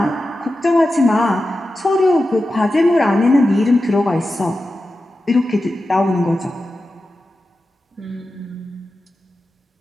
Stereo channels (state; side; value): normal; both; correlation 0.92